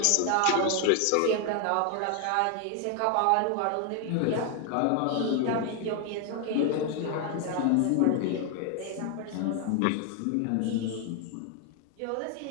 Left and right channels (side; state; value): both; different; correlation 0.01